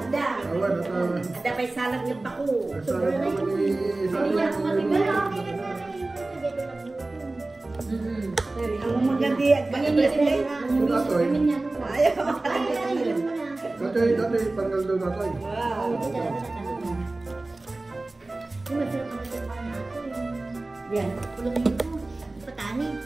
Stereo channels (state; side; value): quieter; left; 3.0 dB